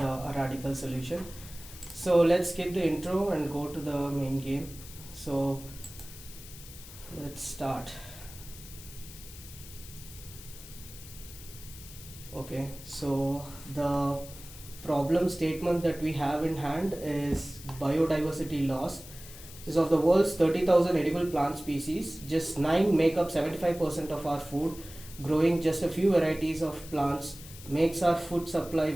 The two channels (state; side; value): noise; left; hiss, 16 dB below the sound